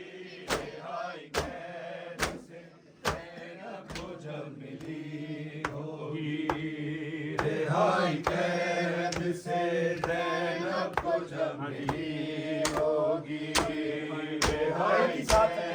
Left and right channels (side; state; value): both; identical; correlation 1.00